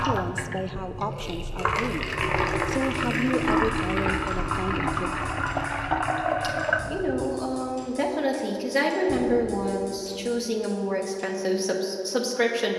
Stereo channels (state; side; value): identical; both; correlation 1.00